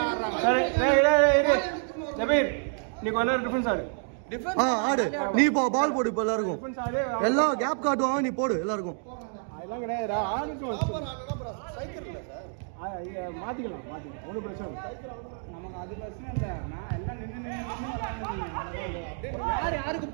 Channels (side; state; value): left; silent; 56 dB below the other